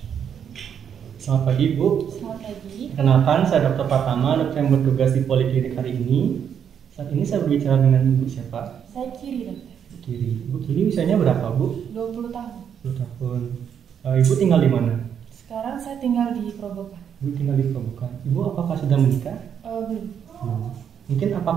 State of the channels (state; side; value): quieter; left; 8.2 dB